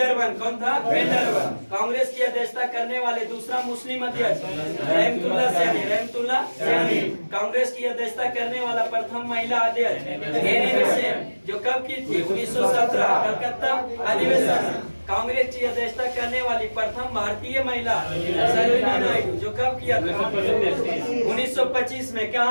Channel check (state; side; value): inverted; both; correlation -1.00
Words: कौन था? बेंडरवन। कांग्रेस की अध्यक्षता करने वाले दूसरा मुस्लिम अध्यक्ष रहमतुल्लाह सैनी। रहमतुल्लाह सैनी। कांग्रेस की अध्यक्षता करने वाला प्रथम महिला अध्यक्ष एनी बेसेंट, जो कब की थी? 1917 कलकत्ता अधिवेशन। कांग्रेस की अध्यक्षता करने वाली प्रथम भारतीय महिला सरोजिनी नायडू, जो कब किया था? 1925 में।